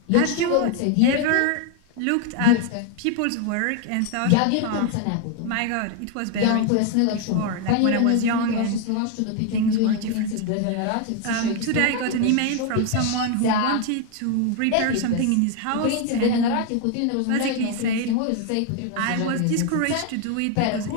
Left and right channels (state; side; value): different; both; correlation 0.01